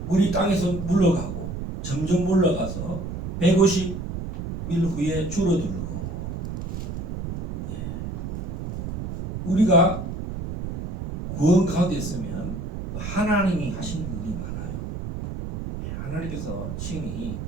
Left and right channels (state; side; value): noise; right; rumble, 6 dB below the sound